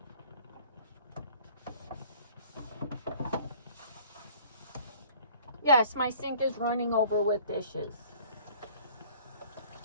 Yes, my sink is running over with dishes.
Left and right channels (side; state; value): both; inverted; correlation -0.51